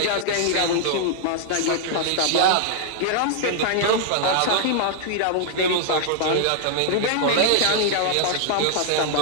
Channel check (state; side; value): different; both; correlation 0.00